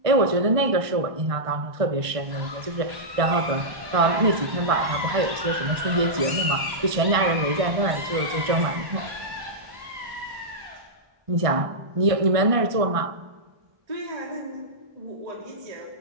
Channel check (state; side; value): late; left; 1.6 ms